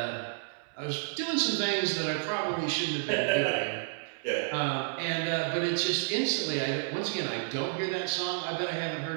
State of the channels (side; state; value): left; silent; 57 dB below the other